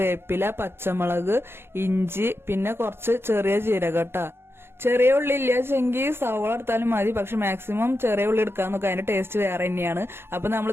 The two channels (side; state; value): left; late; 0.11 ms